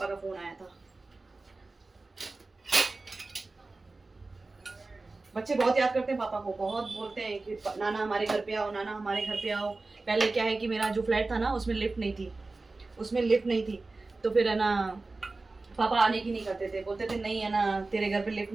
का फ़ोन आया था। बच्चे बहुत याद करते हैं पापा को, बहुत बोलते हैं कि नाना हमारे घर पे आओ, नाना हमारे घर पे आओ। पहले क्या है कि मेरा जो फ्लैट था ना उसमें लिफ्ट नहीं थी, तो फिर है ना पापा आने की नहीं करते थे, बोलते थे नहीं है ना तेरे घर पे लिफ्ट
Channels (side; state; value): left; quieter; 3.5 dB